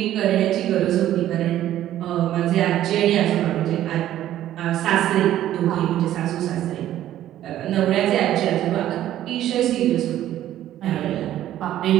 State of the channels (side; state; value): left; quieter; 12.7 dB